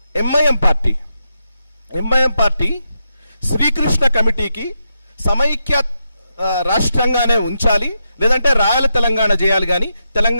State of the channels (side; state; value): both; inverted; correlation -0.85